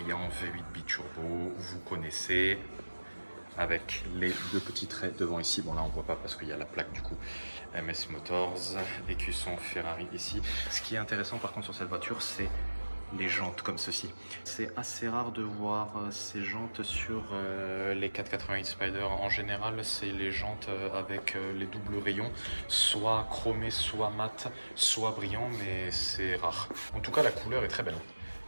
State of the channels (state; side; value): inverted; both; correlation -1.00